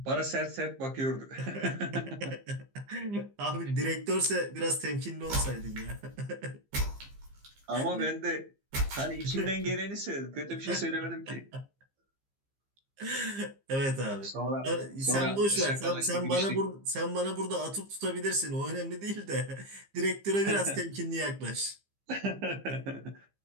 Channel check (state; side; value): late; left; 15 ms